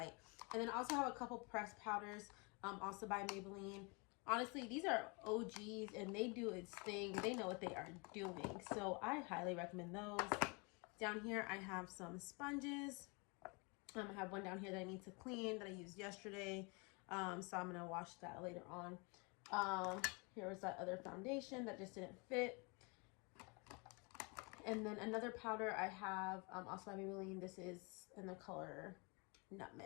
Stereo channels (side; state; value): right; quieter; 31.1 dB